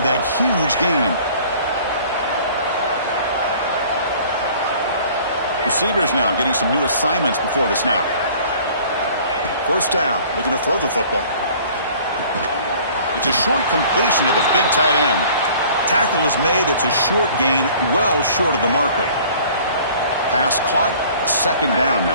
huge gain. Receivers now getting some new assignments before the snap. First down, looking to throw the football. It's a short completion to the big tight end. Tackle is made. It's a short gain, well short of the marker. Pass caught, second down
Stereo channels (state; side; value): inverted; both; correlation -0.51